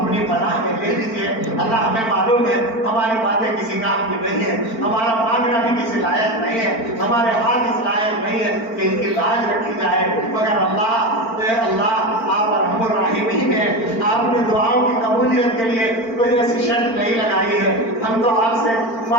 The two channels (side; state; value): right; late; 4.4 ms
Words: پناہ میں لے لیجیے اللہ ہمیں معلوم ہے ہماری باتیں کسی کام کی نہیں ہے ہمارا مانگنا بھی کسی لائق نہیں ہے ہمارے ہاتھ اس لائق نہیں ہے کہ ان کی لاج رکھی جائے مگر اللہ آپ ارحم الراحمین ہیں آپ نے دعاؤں کی قبولیت کے لیے کوئی ایسی شرط نہیں لگائی ہے ہم تو آپ سے